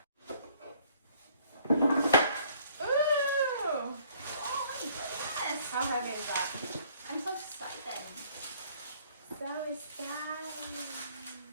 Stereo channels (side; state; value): both; inverted; correlation -0.60